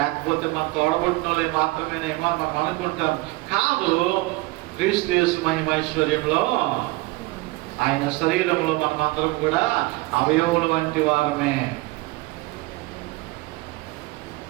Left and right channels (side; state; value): left; quieter; 21.3 dB